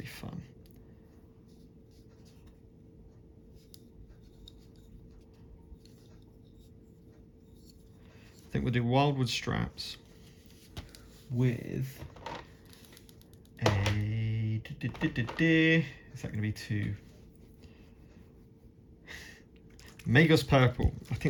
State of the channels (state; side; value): identical; both; correlation 1.00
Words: fun. I think we'll do Wildwood Straps with a... Is that going to be two? Magos Purple. I